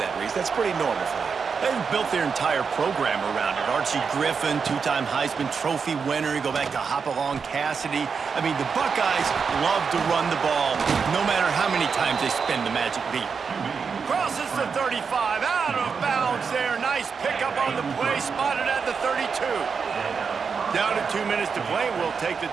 Reese. That's pretty normal for them. They've built their entire program around it. Archie Griffin, two-time Heisman Trophy winner. You go back to Hopalong Cassidy. I mean, the Buckeyes love to run the ball, no matter how many times they spin the magic beat. Crosses the 35, out of bounds there. Nice pickup on the play, spotted at the 32. Down to 2 minutes to play. We'll take the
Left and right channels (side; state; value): left; quieter; 5.7 dB